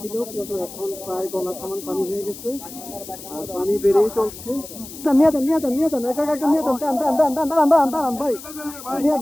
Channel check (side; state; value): left; noise; hiss, 14 dB below the sound